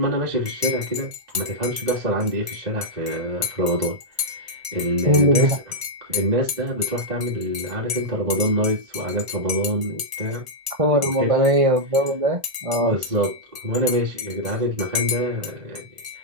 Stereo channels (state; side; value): late; left; 1.0 ms